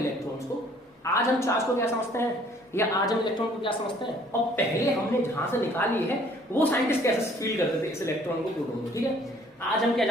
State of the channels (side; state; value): both; normal; correlation 0.58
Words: को, आज हम चार्ज को क्या समझते हैं या आज हम इलेक्ट्रॉन को क्या समझते हैं, और पहले हमने जहां से निकाली है वो साइंटिस्ट कैसे फील करते थे इस इलेक्ट्रॉन को, प्रोटॉन को। ठीक है, आज हम क्या